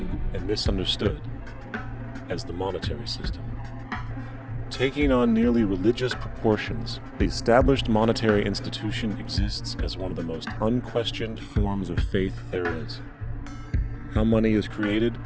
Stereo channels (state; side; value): identical; both; correlation 1.00